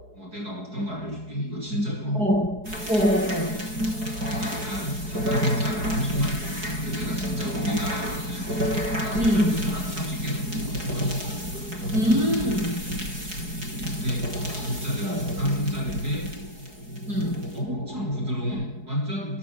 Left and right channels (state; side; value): late; left; 4.7 ms